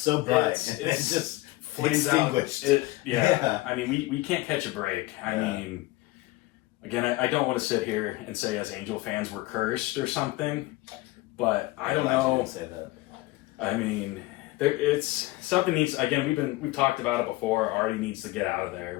bright. It's just flames out. extinguished. Yeah. I mean, we can't catch a break. I mean, again, I don't want to sit here and say as Angel fans we're cursed or something, but I don't know. Say that. I mean, it's something needs. Again, we've talked about it before. Artie needs to get out of there.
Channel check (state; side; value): quieter; right; 19.6 dB